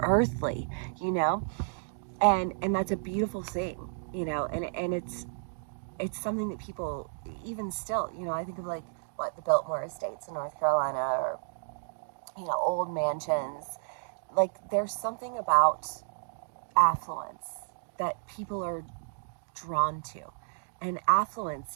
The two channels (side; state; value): left; silent; digital silence